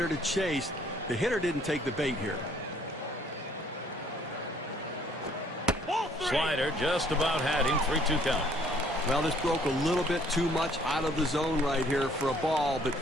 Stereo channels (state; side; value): normal; both; correlation 0.61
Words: to chase. The hitter didn't take the bait here. Slider just about had him. 3-2 count. Well, this broke a little bit too much out of the zone right here for a ball, but